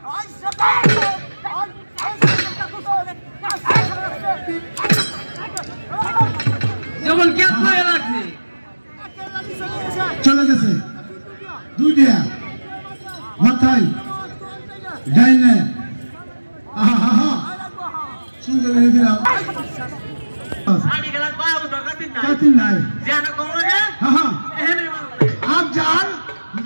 যেমন কে করে রাখছে চলে গেছে দুইটা মাথায় ডাইনে আহা আহা সুন্দর করে দিলাম আড়ি গেল বাবু তো কাটিন নাই জান কোন লাগে আহা এখানে আপ যার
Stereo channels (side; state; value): both; inverted; correlation -1.00